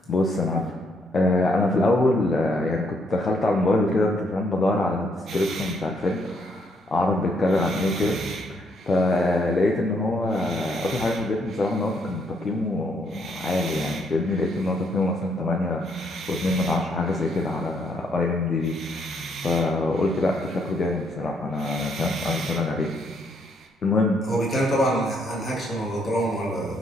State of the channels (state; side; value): normal; both; correlation 0.72